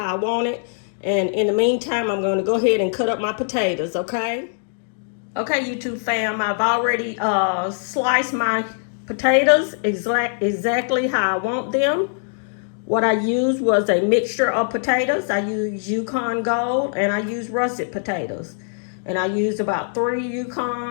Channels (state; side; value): silent; right; digital silence